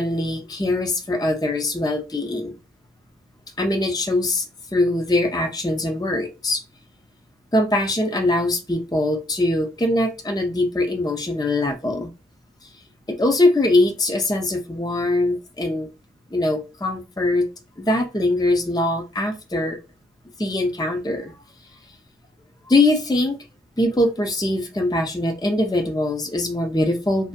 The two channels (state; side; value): normal; both; correlation 0.71